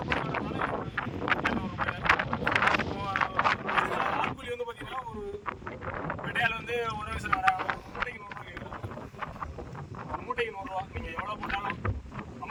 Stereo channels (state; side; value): identical; both; correlation 1.00